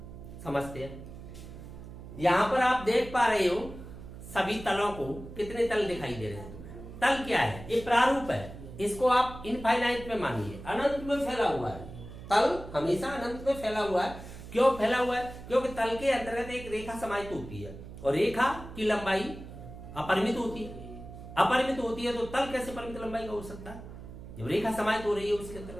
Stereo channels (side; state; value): right; noise; hum, 13 dB below the sound